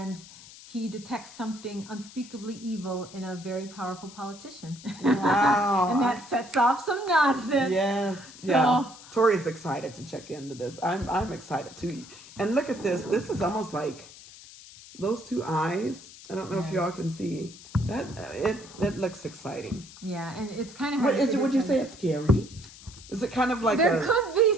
he detects something unspeakably evil in a very powerful politician. Wow. And that sets off some nonsense. Yes. Yeah. Tori's excited to check into this. I'm excited too. And look at this. This is almost like those 2 eyes. I don't know if y'all can see that. It looks exciting. Yeah, and it's kind of hard. Would you say it's scary? Is it kind of like there could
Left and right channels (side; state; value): left; noise; hiss, 18 dB below the sound